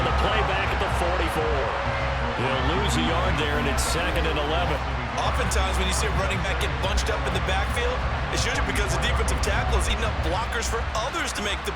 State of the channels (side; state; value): both; identical; correlation 1.00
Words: the play back at the 44. He'll lose a yard there, and it's 2nd and 11. Oftentimes when you see a running back get bunched up in the backfield, it's usually because the defensive tackle is eating up blockers for others to make the